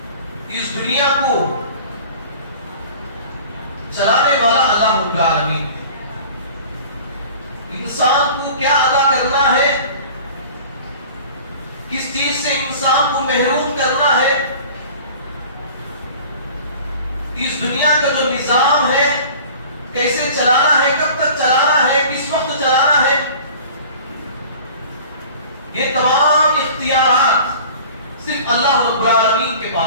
اس دنیا کو چلانے والا اللہ رب العالمین ہے۔ انسان کو کیا ادا کرنا ہے، کس چیز سے انسان کو محروم کرنا ہے، اس دنیا کا جو نظام ہے کیسے چلانا ہے، کب تک چلانا ہے، کس وقت چلانا ہے، یہ تمام اختیارات صرف اللہ رب العالمین کے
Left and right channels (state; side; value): inverted; both; correlation -0.44